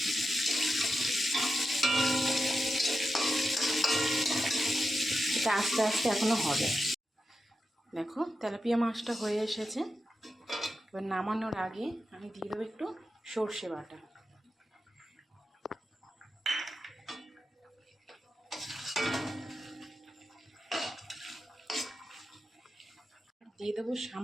এটা আস্তে আস্তে এখনো হবে। দেখো তেলাপিয়া মাছটা হয়ে এসেছে। এবার নামানোর আগে আমি দিয়ে দেবো একটু সর্ষে বাটা, দিয়ে দেবো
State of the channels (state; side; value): normal; both; correlation 0.89